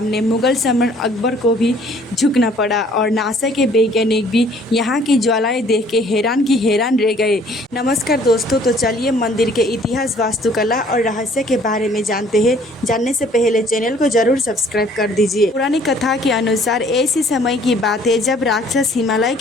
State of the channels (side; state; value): both; normal; correlation 0.57